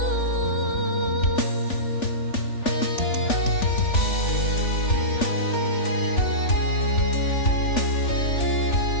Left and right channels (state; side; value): late; right; 3.4 ms